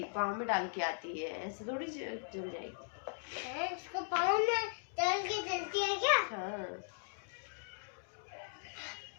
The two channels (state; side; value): silent; right; digital silence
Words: पाँव में डाल के आती है, ऐसे थोड़ी जल जाएगी। इसको पाँव में डाल के जलती है क्या? हाँ।